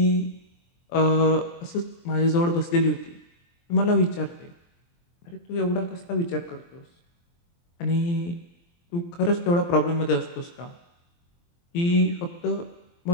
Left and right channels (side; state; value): right; late; 23 ms